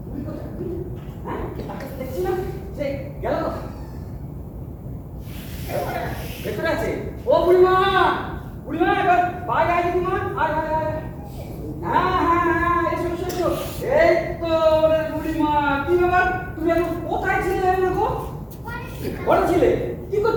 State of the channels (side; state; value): both; identical; correlation 1.00